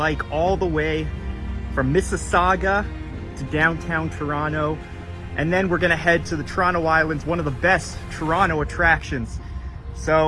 all the way from Mississauga to downtown Toronto, and then we're gonna head to the Toronto Islands, one of the best Toronto attractions.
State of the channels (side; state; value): both; identical; correlation 1.00